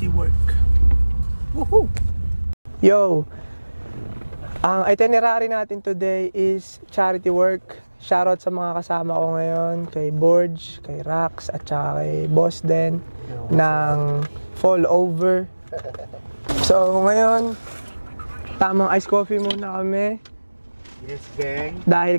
work. Woohoo! Yo, ang itinerary natin today is charity work. Shoutout sa mga kasama ko ngayon, kay Borge, kay Rax, at saka kay Boss Den ng Fall Over. So ngayon, tamang iced coffee muna kami. Yes, gang. Dahil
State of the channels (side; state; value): both; inverted; correlation -1.00